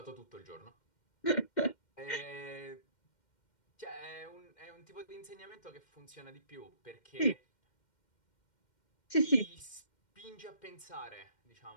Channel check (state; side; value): late; right; 2.1 ms